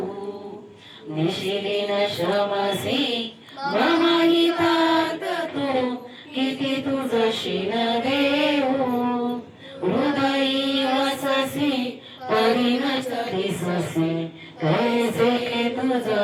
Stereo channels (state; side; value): identical; both; correlation 1.00